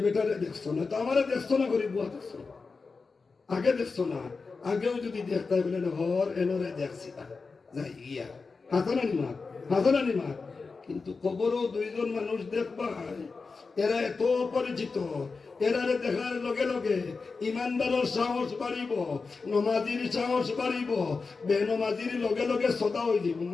বেটারে দেখছো না তো আমারে দেখছো না গরিব বুয়া দেখছো আগে দেখছো না আগেও যদি দেখতে বলেন হর এনরে দেখছি না যাই গিয়া হাসানানি মাত হাসানানি মাত কিন্তু কবরও দুইজন মানুষ দেখবা এরা এত পরিচিত এরারে দেখার লগে লগে ইমানদারের সাহস বাড়িব নমাজির সাহস বাড়িব বেনমাজির লগে লগে সদা হয়ে যাব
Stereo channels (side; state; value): right; quieter; 4.4 dB